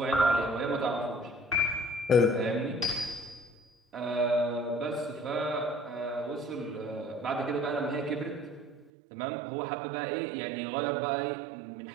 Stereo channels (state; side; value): drops out; left; at 8.9 s